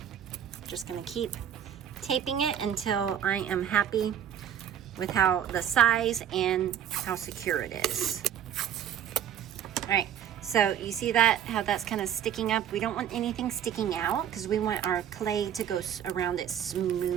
Just gonna keep taping it until I am happy with how the size and how secure it is. All right, so you see that, how that's kind of sticking up? We don't want anything sticking out, because we want our clay to go around it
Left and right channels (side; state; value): left; quieter; 9.7 dB